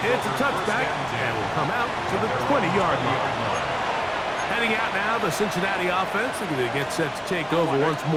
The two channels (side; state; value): both; identical; correlation 1.00